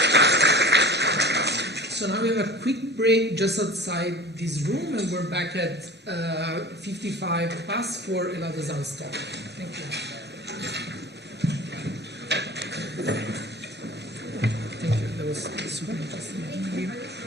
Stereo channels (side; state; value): both; normal; correlation 0.39